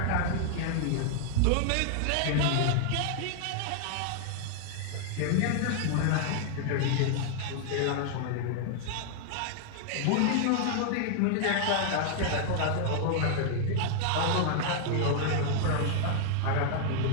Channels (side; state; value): both; different; correlation 0.00